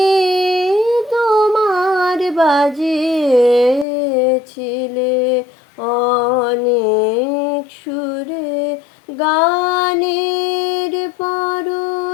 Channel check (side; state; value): right; drops out; at 3.9 s